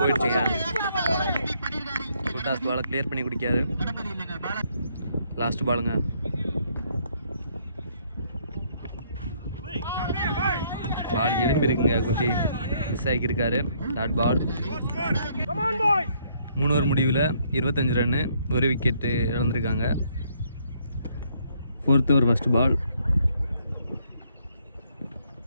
ஃபுல் டாஸ் பாலை கிளியர் பண்ணி குடிக்காது. லாஸ்ட் பாலுங்க. பால் எலும்பி இருக்குங்க. குட்டி மிஸ் ஆகியிருக்காரு. Dot ball. 3 ஓவர் முடிவில் 25 ரன்னு, 1 விக்கெட்டு இழந்திருக்காங்க. 4th ஓவர் ஃபர்ஸ்ட் பால்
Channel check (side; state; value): both; inverted; correlation -0.68